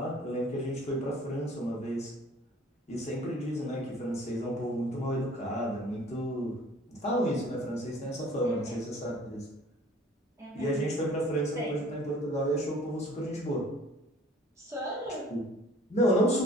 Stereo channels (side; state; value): both; normal; correlation 0.51